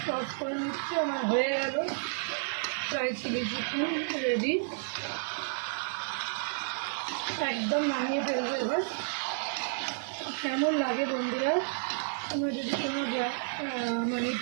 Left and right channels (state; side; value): silent; left; digital silence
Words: টস করে নিচ্ছি। আমার হয়ে গেল ড্রাই চিলি চিকেন রেডি। একদম নামিয়ে ফেলবো এবার। কেমন লাগে বন্ধুরা? তোমরা যদি কোনো মানে